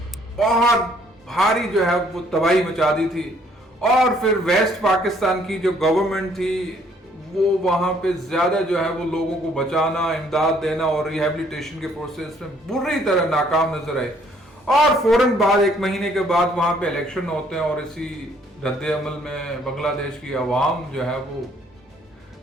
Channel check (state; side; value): normal; both; correlation 0.63